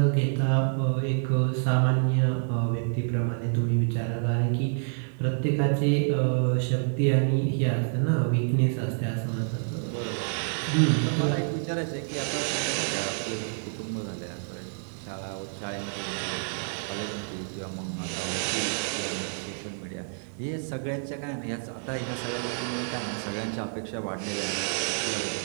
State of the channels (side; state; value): left; silent; digital silence